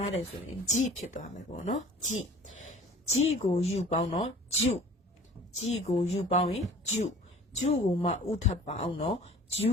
းတယ်ဆိုရင်ဂျီဖြစ်သွားမယ်ပေါ့နော်ဂျီကိုယူပေါင်းတော့ဂျူဂျီကိုယူပေါင်းရင်ဂျူဂျူကိုမှဥထပ်ပေါင်းတော့ဂျူ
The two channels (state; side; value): normal; both; correlation 0.47